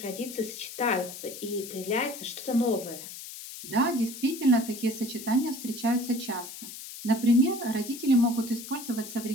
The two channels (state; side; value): noise; left; hiss, 12 dB below the sound